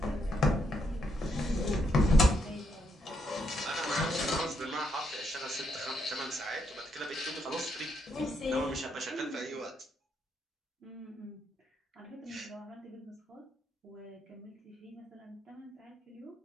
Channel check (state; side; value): normal; both; correlation 0.77